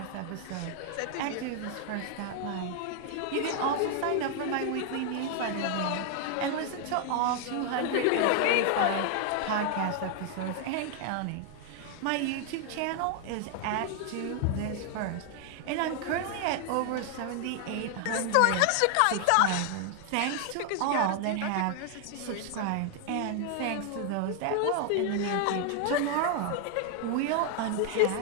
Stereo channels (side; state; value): both; different; correlation 0.00